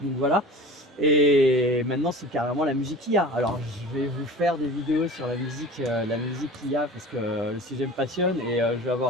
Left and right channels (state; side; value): normal; both; correlation 0.39